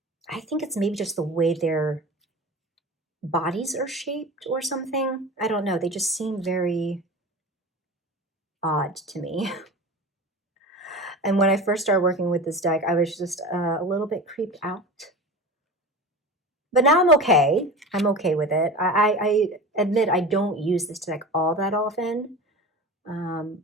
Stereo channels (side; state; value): both; normal; correlation 0.32